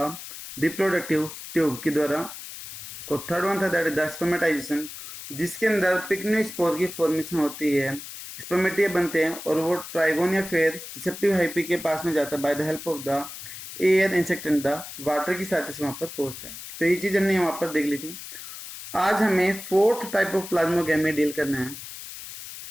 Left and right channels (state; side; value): noise; left; hiss, 12 dB below the sound